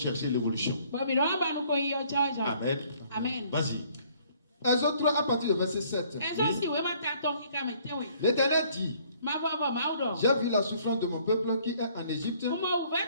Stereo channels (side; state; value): both; inverted; correlation -0.61